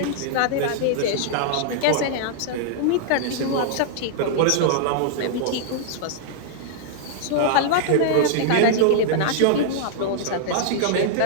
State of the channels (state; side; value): different; both; correlation -0.01